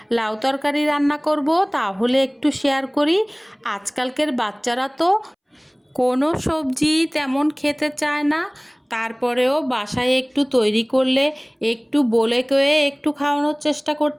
লাউ তরকারি রান্না করব, তাহলে একটু শেয়ার করি। আজকালকের বাচ্চারা তো কোনো সবজি তেমন খেতে চায় না, তারপরেও বাসায় একটু তৈরি করলে একটু বলে কয়ে একটু খাওয়ানোর চেষ্টা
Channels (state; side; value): identical; both; correlation 1.00